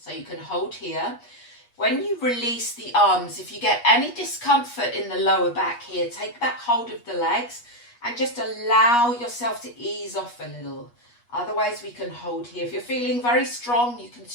So you can hold here. When you release the arms, if you get any discomfort in the lower back here, take back hold of the legs and just allow yourself to ease off a little. Otherwise, we can hold here. If you're feeling very strong, you can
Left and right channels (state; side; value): late; right; 8.3 ms